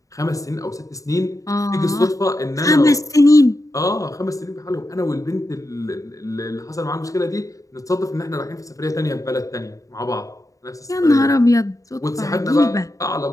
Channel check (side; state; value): right; late; 0.16 ms